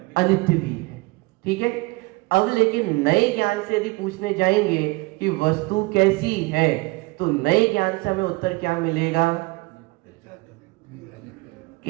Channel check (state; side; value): quieter; left; 24.6 dB